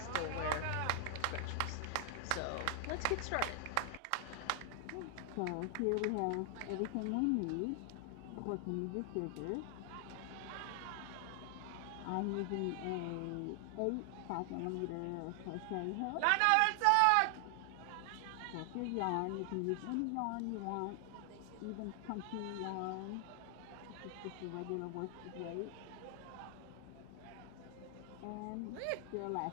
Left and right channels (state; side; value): different; both; correlation 0.00